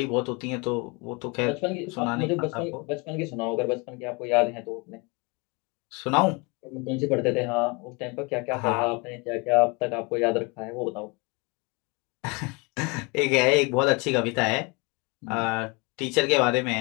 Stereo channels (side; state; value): right; quieter; 29.1 dB